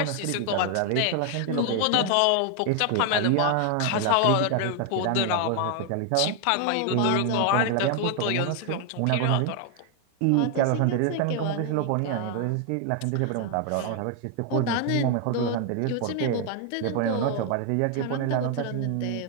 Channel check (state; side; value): different; both; correlation 0.00